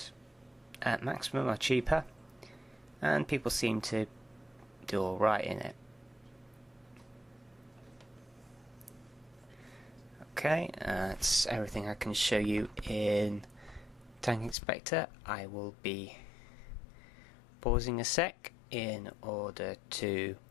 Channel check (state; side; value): drops out; right; at 14.6 s